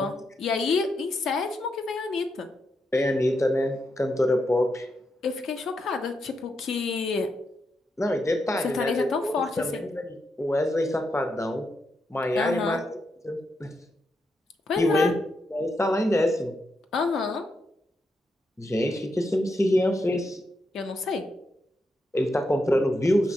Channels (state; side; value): normal; both; correlation 0.83